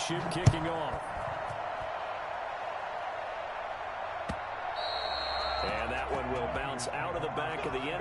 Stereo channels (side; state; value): both; identical; correlation 1.00